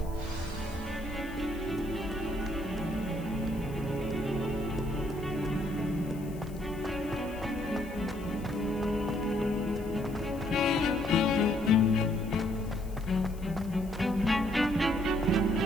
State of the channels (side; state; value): left; noise; hiss, 22 dB below the sound